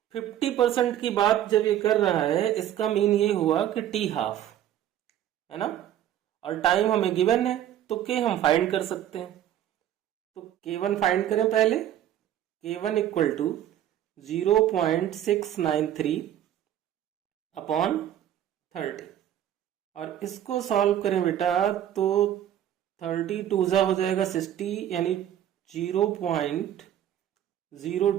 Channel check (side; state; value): left; quieter; 11.3 dB